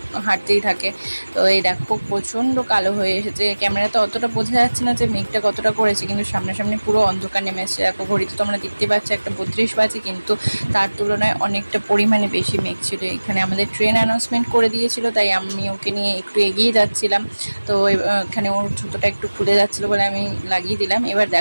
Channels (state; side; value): inverted; both; correlation -1.00